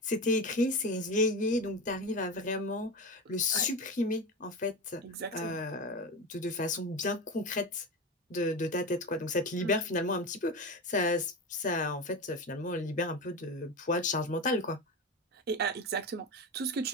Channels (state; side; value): normal; both; correlation 0.22